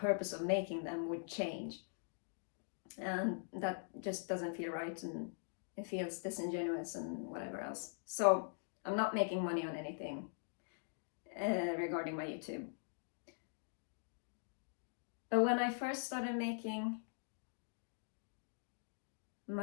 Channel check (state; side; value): silent; right; digital silence